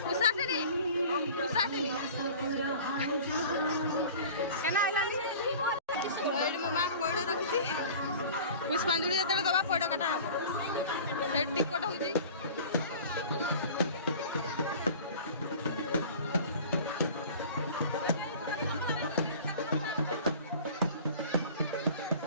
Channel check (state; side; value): inverted; both; correlation -0.42